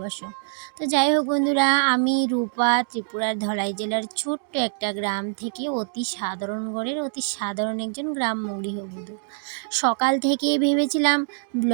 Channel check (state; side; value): silent; left; 61 dB below the other